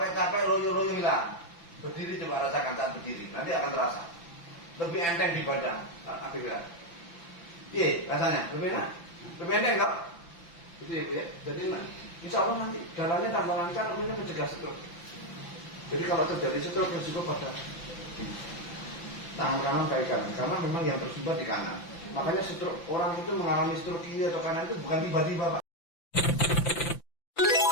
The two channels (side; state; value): right; late; 5.9 ms